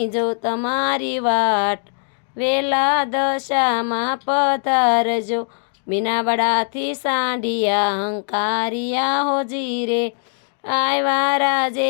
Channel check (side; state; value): right; silent; digital silence